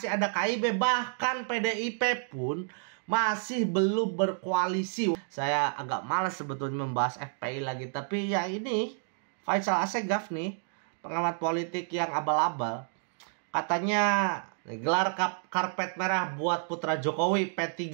ada KIB, bahkan PDIP pun masih belum berkoalisi. Saya agak malas sebetulnya membahas FPI lagi. Tapi ya ini, Faisal Assegaf nih, pengamat politik yang abal-abal. Katanya gelar karpet merah buat putra Jokowi. P3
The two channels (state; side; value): silent; left; digital silence